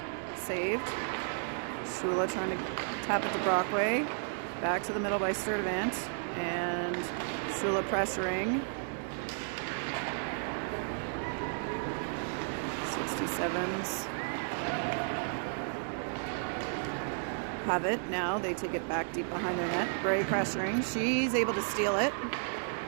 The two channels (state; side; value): silent; left; digital silence